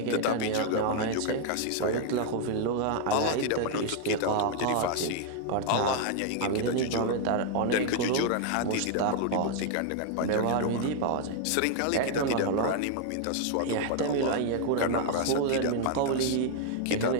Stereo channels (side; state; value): both; different; correlation 0.00